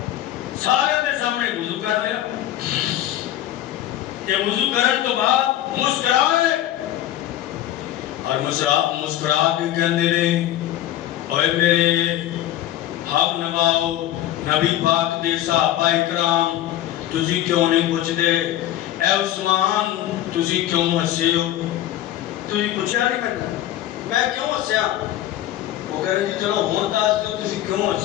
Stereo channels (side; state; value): right; quieter; 13.0 dB